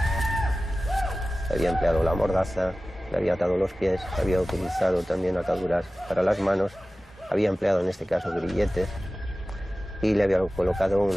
Había empleado la mordaza, le había atado los pies, había utilizado también ataduras para las manos, había empleado en este caso grilletes y le había colocado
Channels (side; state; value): both; normal; correlation 0.96